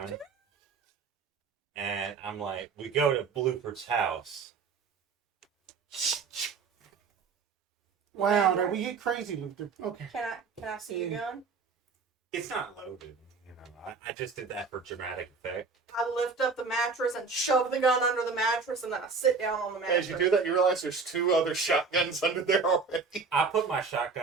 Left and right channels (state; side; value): quieter; left; 4.8 dB